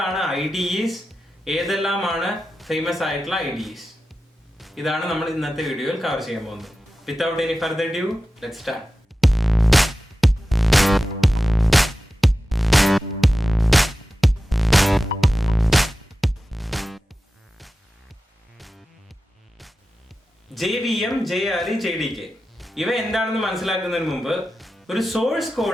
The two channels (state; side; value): normal; both; correlation 0.93